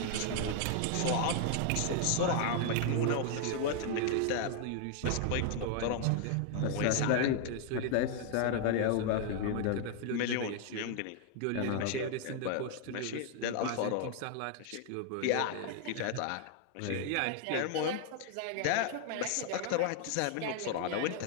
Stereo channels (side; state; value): both; different; correlation 0.00